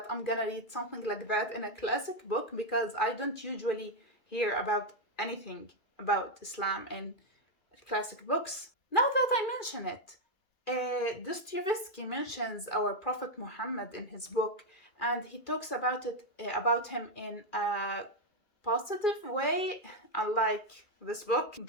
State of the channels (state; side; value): late; right; 2.4 ms